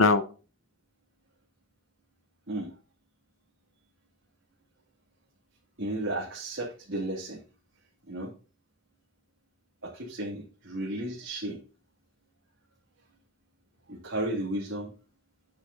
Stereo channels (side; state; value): both; normal; correlation 0.04